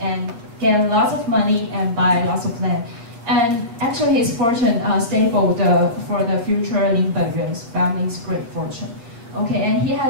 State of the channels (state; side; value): late; left; 8.5 ms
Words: get lots of money and buy lots of land. And actually his fortune stapled for the future Lin Benyuan's family's great fortune. Okay, and he